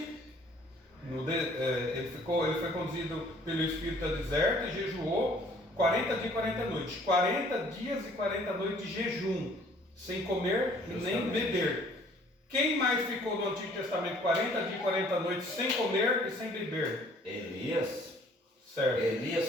ele foi conduzido pelo Espírito ao deserto e jejuou 40 dias e 40 noites. 40 dias e 40 noites de jejum, sem comer nem beber. Quem mais ficou no Antigo Testamento 40 dias e 40 noites sem comer e sem beber? Elias. Certo. Elias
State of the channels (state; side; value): normal; both; correlation 0.57